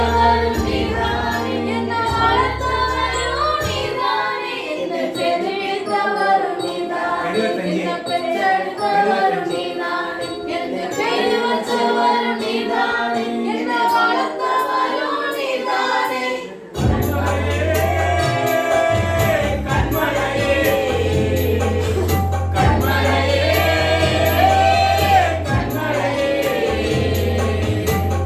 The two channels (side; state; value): both; identical; correlation 1.00